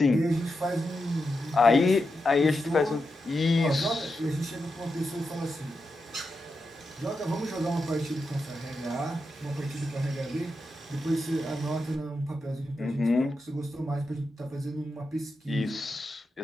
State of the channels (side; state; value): both; normal; correlation 0.88